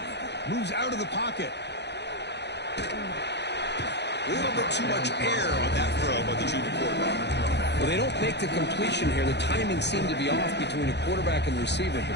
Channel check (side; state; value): right; late; 0.50 ms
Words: Moves out of the pocket. A little bit too much air on that throw by the junior quarterback. Well, they don't make the completion here. The timing seemed to be off between the quarterback and the receiver.